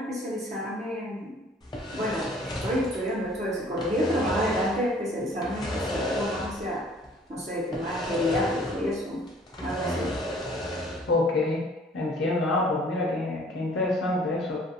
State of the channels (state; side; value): normal; both; correlation 0.55